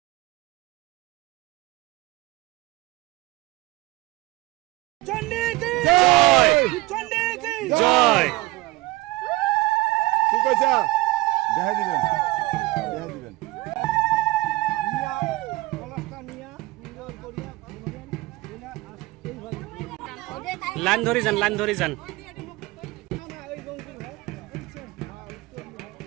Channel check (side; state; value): left; quieter; 20.3 dB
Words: চণ্ডী কি জয়, চণ্ডী কি জয়। ঠিক আছে দেখা দিবেন लाइन धरी जान